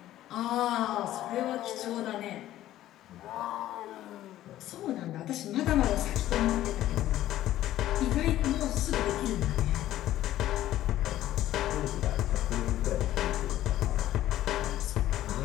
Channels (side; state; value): right; quieter; 13.7 dB